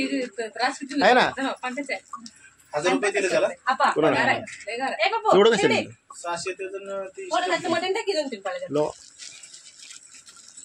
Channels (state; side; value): identical; both; correlation 1.00